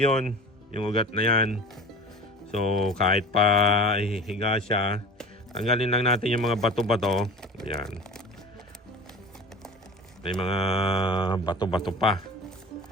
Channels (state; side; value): normal; both; correlation 0.38